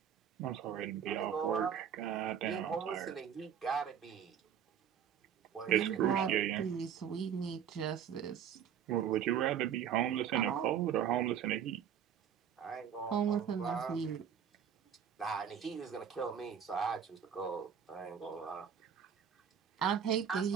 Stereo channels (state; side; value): quieter; left; 8.5 dB